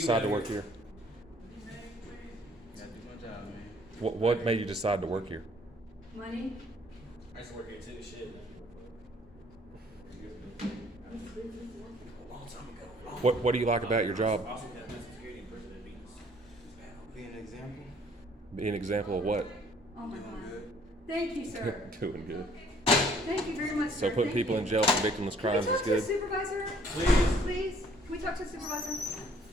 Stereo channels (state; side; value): normal; both; correlation 0.59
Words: to work here? Gotta do my job, man. What made you decide to work here? Money? I used to work here too, shit. A long time ago. What do you like about your job? I also had mental security in prison at Venus. Be an example. Be an example of what? Oh my God. Thank you, sir. Doing good. Thank you very much, So sir. putting Thank people you. in jail for victimless crimes Can we is talk to the good. supervisor? Please. Please? Can we talk to the supervisor?